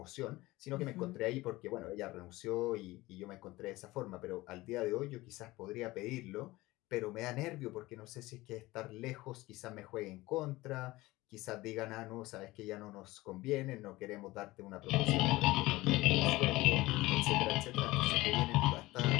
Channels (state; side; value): quieter; right; 19.4 dB